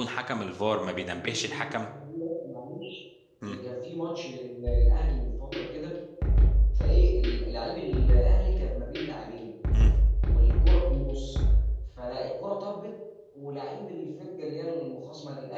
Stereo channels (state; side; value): identical; both; correlation 1.00